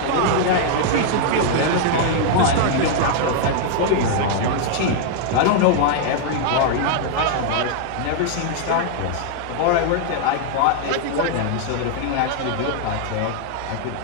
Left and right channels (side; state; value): both; different; correlation 0.00